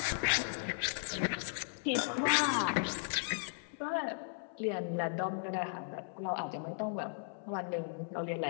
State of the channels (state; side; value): silent; right; 54 dB below the other